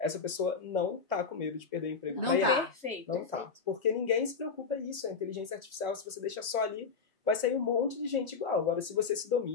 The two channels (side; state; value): right; quieter; 5.2 dB